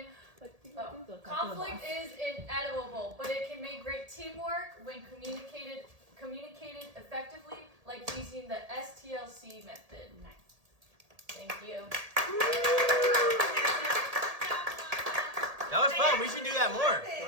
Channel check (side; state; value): left; late; 1.8 ms